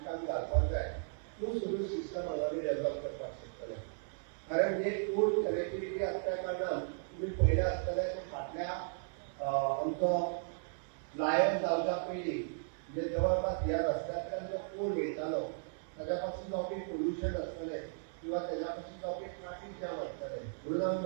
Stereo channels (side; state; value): left; silent; 54 dB below the other